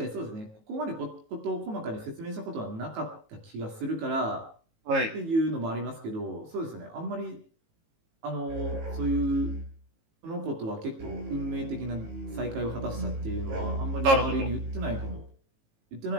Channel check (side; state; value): left; late; 18 ms